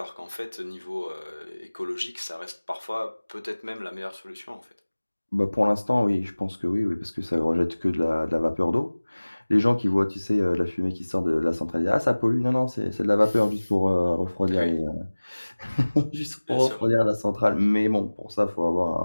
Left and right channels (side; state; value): both; inverted; correlation -1.00